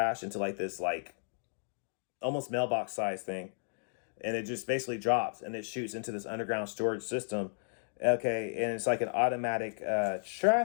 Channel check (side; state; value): right; silent; digital silence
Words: into like this, like almost mailbox size thing. And it just basically drops and it shoots into this underground storage system. Okay, and it's like an automatic